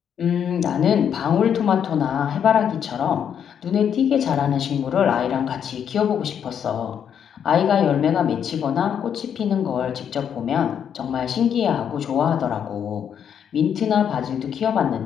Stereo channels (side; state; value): right; quieter; 8.4 dB